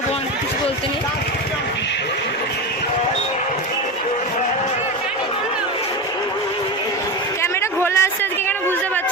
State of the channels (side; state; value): right; noise; hum, 29 dB below the sound